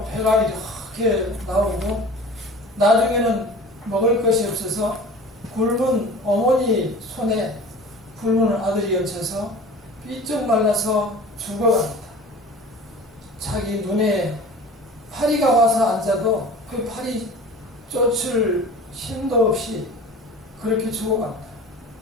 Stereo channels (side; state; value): both; normal; correlation 0.40